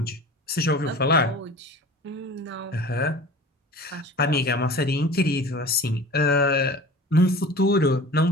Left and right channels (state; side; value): normal; both; correlation 0.40